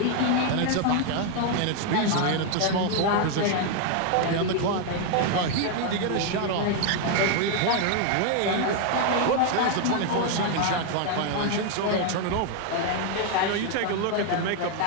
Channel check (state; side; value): different; both; correlation 0.01